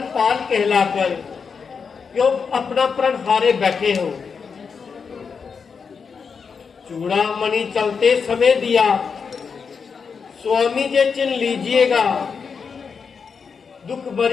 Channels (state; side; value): quieter; right; 5.8 dB